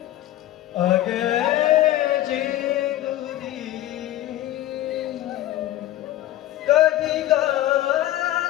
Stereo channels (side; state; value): right; quieter; 14.2 dB